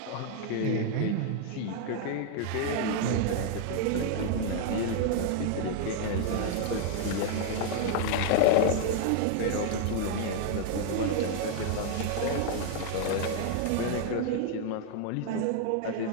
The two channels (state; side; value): different; both; correlation 0.00